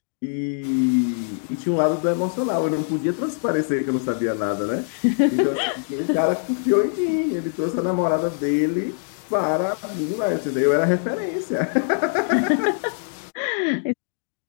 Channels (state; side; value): silent; right; digital silence